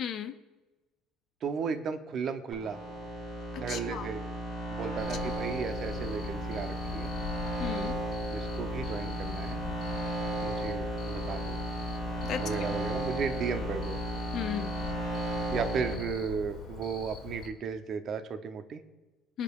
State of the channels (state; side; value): normal; both; correlation 0.61